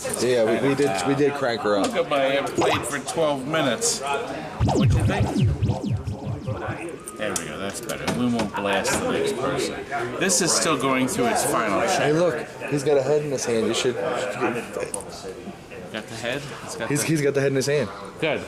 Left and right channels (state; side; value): identical; both; correlation 1.00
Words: Yeah, we did crank her up. Look at my played for 12 minutes. What'd you think? There we go, that's better. We won't blast the next person. This is still going through its final check. Hey, look, he's got a head in his hand. You should. Got the head? He's got the head in his hand. Good.